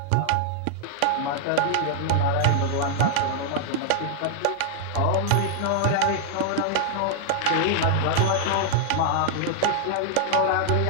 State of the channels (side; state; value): both; different; correlation 0.00